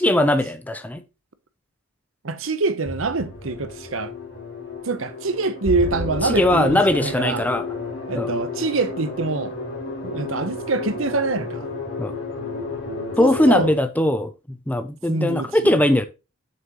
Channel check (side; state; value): both; normal; correlation 0.49